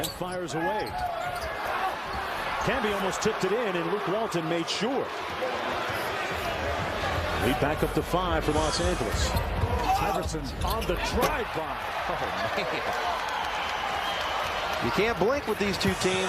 fires away. Camby almost tipped it in, and Luke Walton made sure. Lead back up to 5 for Los Angeles. Iverson on the drive-by. Oh, man. You can't blink with these two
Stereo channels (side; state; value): both; identical; correlation 1.00